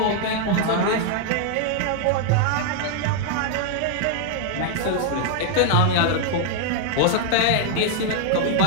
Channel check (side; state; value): both; different; correlation 0.00